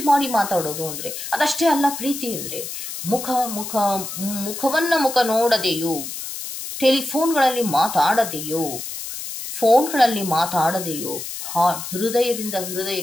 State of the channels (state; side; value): noise; left; hiss, 8 dB below the sound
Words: ಮಾಡಿ ಮಾತಾಡೋದು ಅಂದರೆ ಅದಷ್ಟೇ ಅಲ್ಲ ಪ್ರೀತಿ ಅಂದರೆ. ಮುಖ ನೋಡದೆಯೋ, ಟೆಲಿಫೋನ್ಗಳಲ್ಲಿ ಮಾತಾಡದೆಯೋ, ಫೋನ್ಗಳಲ್ಲಿ ಮಾತಾಡದೆಯೋ ಹೃದಯದಿಂದ